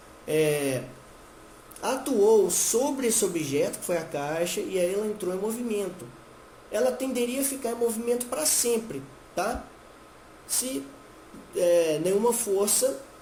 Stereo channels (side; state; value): both; identical; correlation 1.00